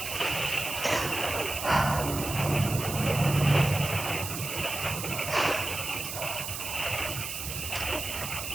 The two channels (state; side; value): noise; right; hiss, 6 dB below the sound